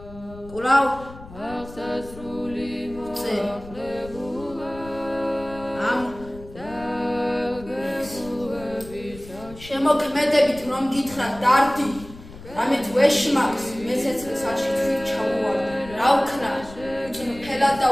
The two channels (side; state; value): left; noise; rumble, 17 dB below the sound